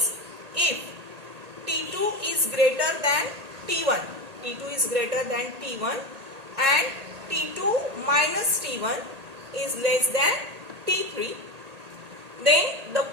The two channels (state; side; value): late; left; 1.8 ms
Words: if T2 is greater than T1. T2 is greater than T1 and T2 minus T1 is less than T3. Then the